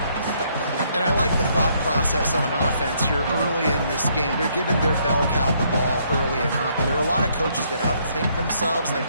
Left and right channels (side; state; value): both; inverted; correlation -0.69